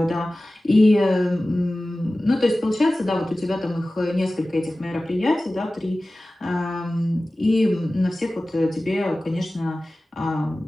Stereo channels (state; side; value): normal; both; correlation 0.96